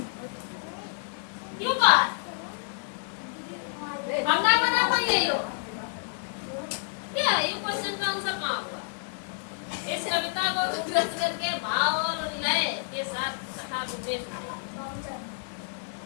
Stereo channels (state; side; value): silent; right; digital silence